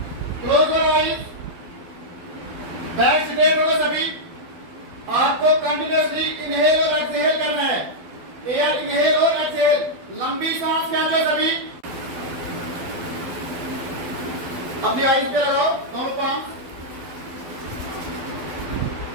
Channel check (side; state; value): left; late; 12 ms